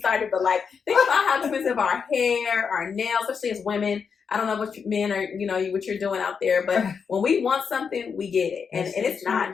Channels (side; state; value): right; quieter; 6.2 dB